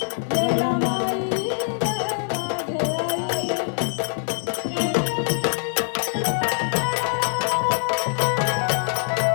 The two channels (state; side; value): silent; right; digital silence